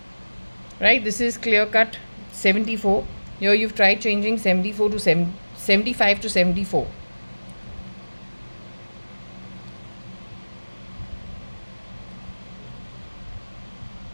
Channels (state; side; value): inverted; both; correlation -1.00